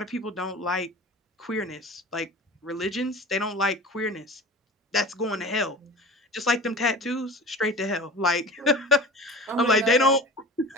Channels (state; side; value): normal; both; correlation 0.36